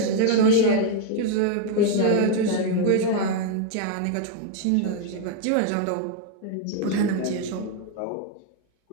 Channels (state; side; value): different; both; correlation 0.00